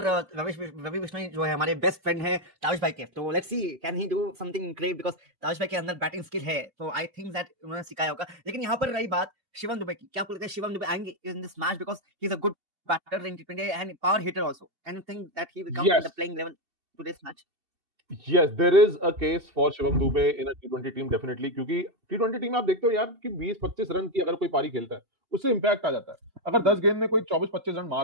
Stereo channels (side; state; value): left; late; 2.7 ms